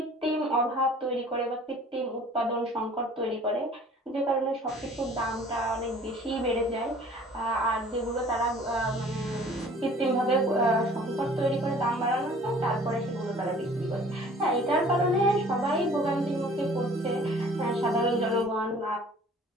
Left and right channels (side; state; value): both; normal; correlation 0.50